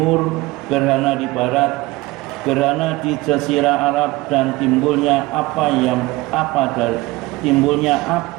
gerhana di barat, gerhana di Jazirah Arab, dan timbulnya timbulnya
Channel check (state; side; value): quieter; left; 20.6 dB